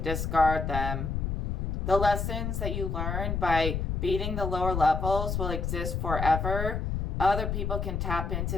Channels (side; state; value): left; noise; rumble, 1 dB below the sound